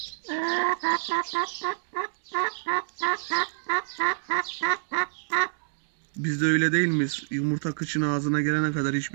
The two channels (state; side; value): silent; left; digital silence